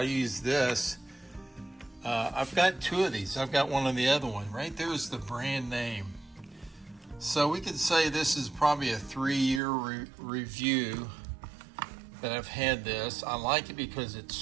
use this. I've got two of these. I've got one on the other one. Right there is the brand name. So we could say this is probably a 3-year review that I've had this. I like it because it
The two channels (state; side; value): drops out; left; at 9.6 s